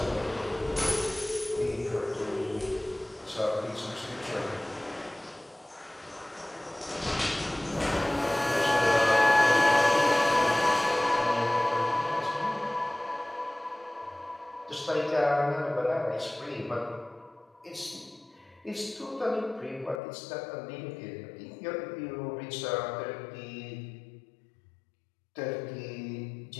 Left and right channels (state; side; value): drops out; right; at 20.0 s